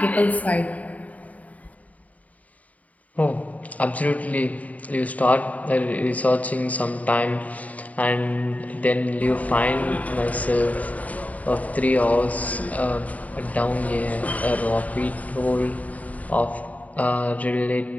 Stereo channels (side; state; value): right; late; 0.071 ms